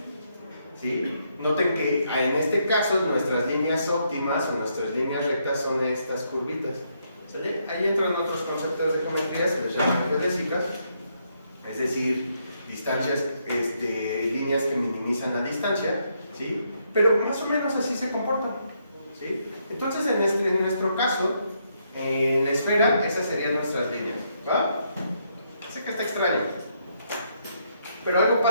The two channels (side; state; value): both; inverted; correlation -0.76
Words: ¿sí? Noten que en este caso nuestras líneas óptimas o nuestras líneas rectas son estas curvitas, ¿sale? Ahí entran otros conceptos de geometría, se les llaman geodésicas, es decir, distancias, líneas que minimizan la distancia, ¿sí? Pero más o menos así se comportan, ¿sí? Entonces, en nuestro caso, en la esfera, esas serían nuestras líneas, ¿va? Sé que está extraño, pero algo